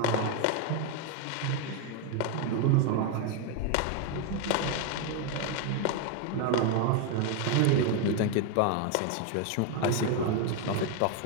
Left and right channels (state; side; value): different; both; correlation 0.01